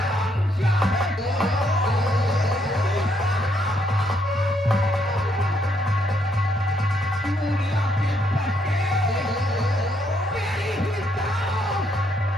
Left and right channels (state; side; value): normal; both; correlation 0.73